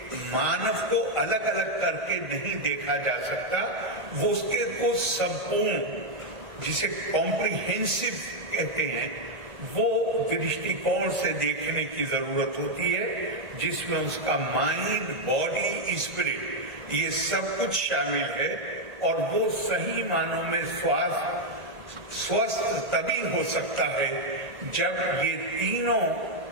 मानव को अलग अलग करके नहीं देखा जा सकता, वो उसके को संपूर्ण, जिसे कॉम्प्रिहेंसिव कहते हैं, वो दृष्टिकोण से देखने की जरूरत होती है, जिसमें उसका माइंड, बॉडी, स्पिरिट ये सब कुछ शामिल है, और वो सही मानों में स्वस्थ तभी हो सकता है जब ये तीनों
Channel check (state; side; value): late; left; 1.8 ms